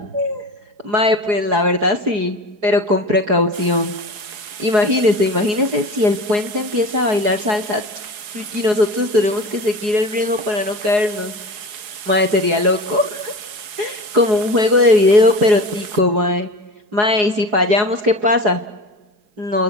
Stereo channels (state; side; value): late; left; 4.8 ms